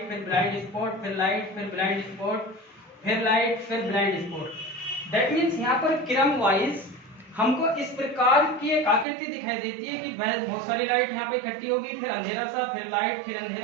फिर ब्लाइंड स्पॉट, फिर लाइट, फिर ब्लाइंड स्पॉट, फिर लाइट, फिर ब्लाइंड स्पॉट। दैट मीन्स यहाँ पर क्रम वाइज हमको इस प्रकार की एक आकृति दिखाई देती है कि बहुत सारी लाइट यहाँ पे इकट्ठी होगी, फिर अंधेरा सा, फिर लाइट, फिर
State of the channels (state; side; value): drops out; left; at 9.1 s